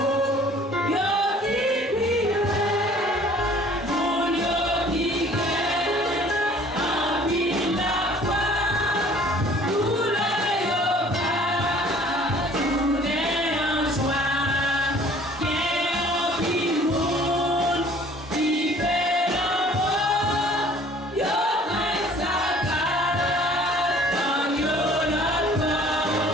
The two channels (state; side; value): normal; both; correlation 0.53